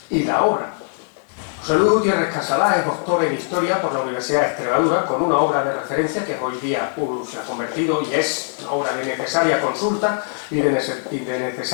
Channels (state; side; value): silent; right; 64 dB below the other